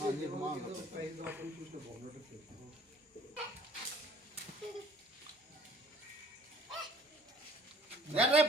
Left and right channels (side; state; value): both; normal; correlation 0.55